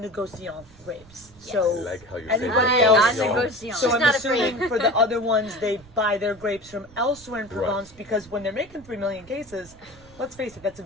grapes. Yes. So I like how you're saying anybody Ah, else. non-negociant. So She's I'm not assuming for the other ones, they buy their grapes from elsewhere in Provence because when they're making 3 million cases, let's face it, that's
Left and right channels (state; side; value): noise; right; rumble, 25 dB below the sound